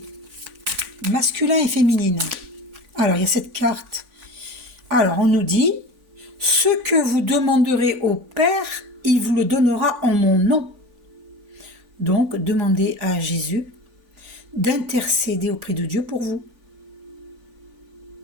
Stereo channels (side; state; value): left; late; 3.5 ms